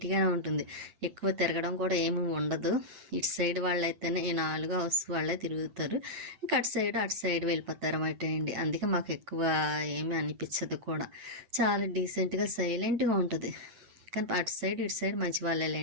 ఉంటుంది, ఎక్కువ తిరగడం కూడా ఏమి ఉండదు. ఇటు సైడ్ వాళ్ళైతేనే ఈ 4 హౌస్ వాళ్ళే తిరుగుతారు, ఇంకా అటు సైడ్ వెళ్ళిపోతారు అన్నమాట అండి. అందుకే మాకు ఎక్కువ ఏమీ అనిపించదు కూడా, చాలా డీసెంట్గా సైలెంట్గా ఉంటుంది. కానీ అటు సైడ్ ఇటు సైడ్ మంచి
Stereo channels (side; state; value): left; late; 7.9 ms